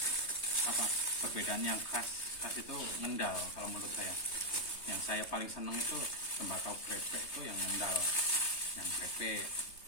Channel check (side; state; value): right; late; 3.3 ms